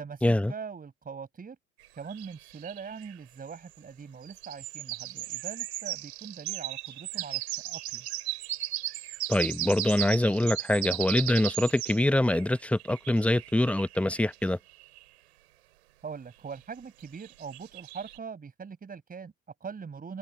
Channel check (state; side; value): normal; both; correlation 0.82